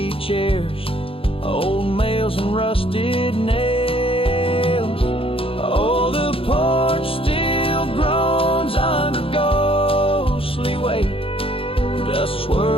chairs, old mails and rusted nails. Oh, the porch still groans under ghostly weight. Dust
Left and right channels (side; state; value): right; late; 0.27 ms